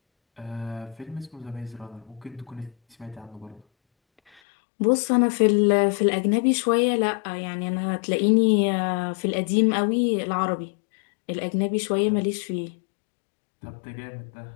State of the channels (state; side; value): drops out; right; at 4.4 s